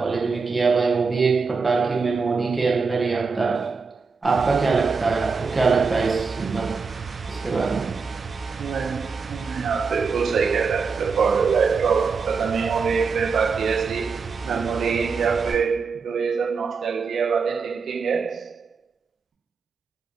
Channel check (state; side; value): quieter; left; 4.9 dB